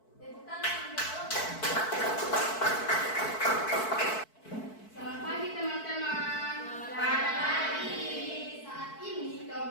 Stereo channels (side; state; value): right; late; 4.6 ms